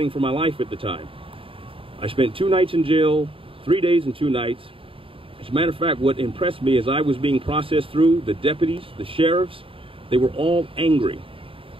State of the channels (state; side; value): late; left; 0.26 ms